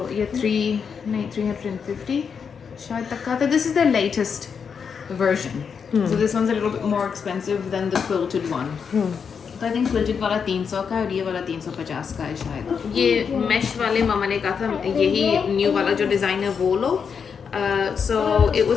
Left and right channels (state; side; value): quieter; right; 6.4 dB